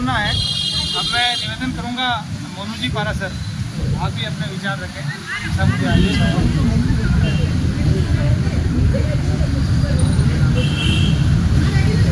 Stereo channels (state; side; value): identical; both; correlation 1.00